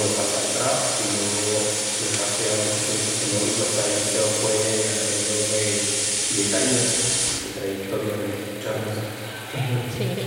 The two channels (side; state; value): both; identical; correlation 1.00